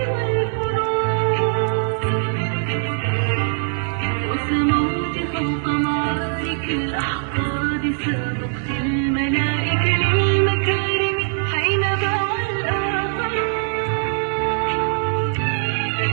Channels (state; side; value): silent; left; 65 dB below the other